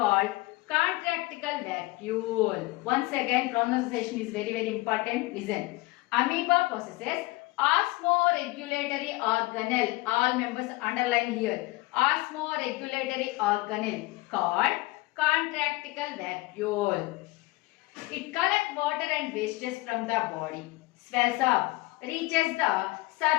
contractical vacuole. Once again, pronunciation is very important. Listen. Amoeba possesses osmoregulatory organelle. All members underline here. Osmoregulatory organelle called contractical vacuole. It collects water and wastes from the body, swells up, reaches the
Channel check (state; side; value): quieter; right; 21.2 dB